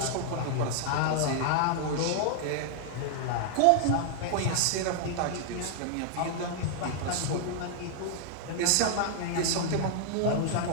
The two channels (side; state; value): both; different; correlation -0.01